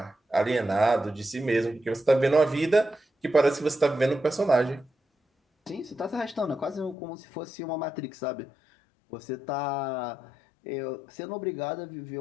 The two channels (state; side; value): drops out; right; at 7.0 s